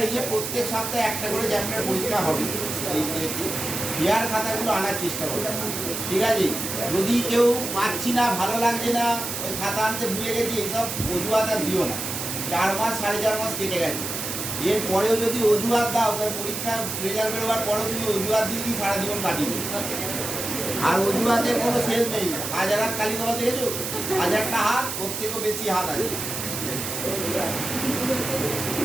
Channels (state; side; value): noise; right; hiss, 5 dB below the sound